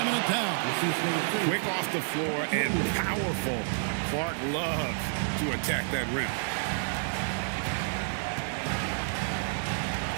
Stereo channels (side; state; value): left; silent; digital silence